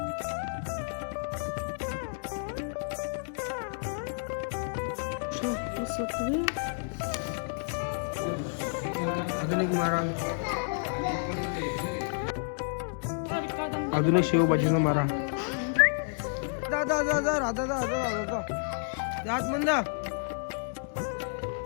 अजून एक मारा, अजून एक शेवभाजीचा मारा. दादा दादा राधा दादा दादा जात म्हणा.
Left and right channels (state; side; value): silent; right; digital silence